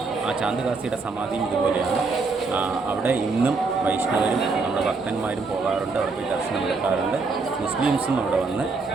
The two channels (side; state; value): left; quieter; 4.1 dB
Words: ആ ചാന്തുകാസിയുടെ സമാധിയും ഇതുപോലെയാണ്. അവിടെ ഇന്നും വൈഷ്ണവരും നമ്മുടെ ഭക്തന്മാരും പോകാറുണ്ട്, അവിടെ പോയി ദർശനം എടുക്കാറുണ്ട്. മുസ്ലിംസും അവിടെ വന്ന്